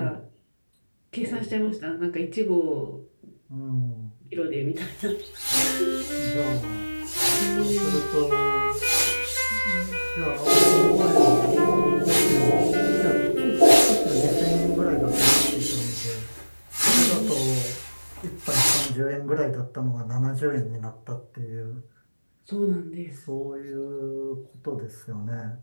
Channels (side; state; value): both; inverted; correlation -1.00